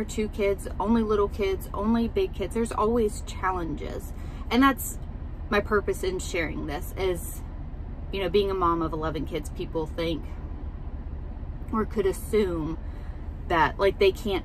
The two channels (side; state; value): both; identical; correlation 1.00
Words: 2 kids, only little kids, only big kids, there's always challenges. And that's my purpose in sharing this is, you know, being a mom of 11 kids, people think or could assume that like they can't